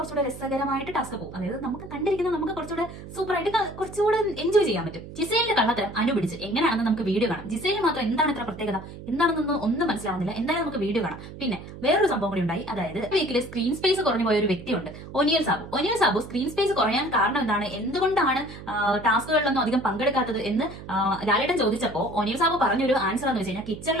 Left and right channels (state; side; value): noise; right; hum, 13 dB below the sound